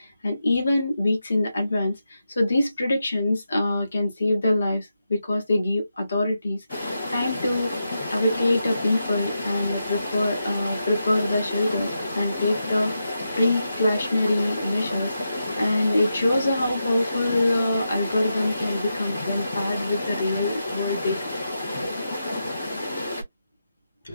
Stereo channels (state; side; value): inverted; both; correlation -0.87